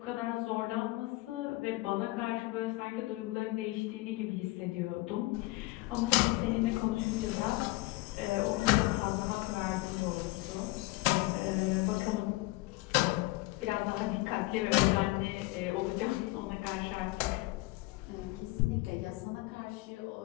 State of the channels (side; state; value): right; quieter; 21.0 dB